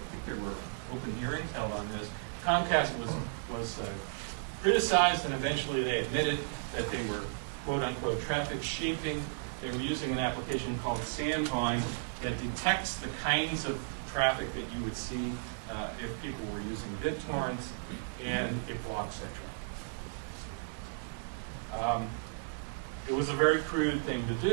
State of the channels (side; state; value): left; silent; digital silence